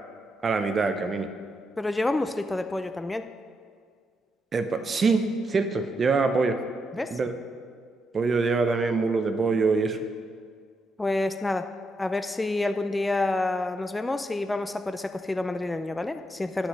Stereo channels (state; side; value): normal; both; correlation 0.82